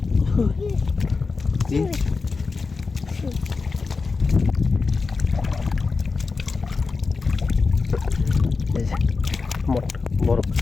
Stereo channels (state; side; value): quieter; right; 4.4 dB